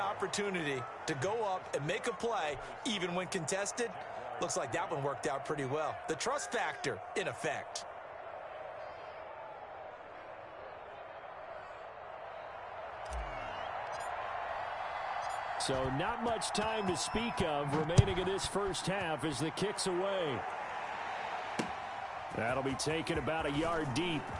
to go up and make a play, even when contested. Looks like that one worked out pretty well. The trust factor in effect. So not much time to speak of remaining in this first half as the kick's away. That'll be taken about a yard deep.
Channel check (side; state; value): both; identical; correlation 1.00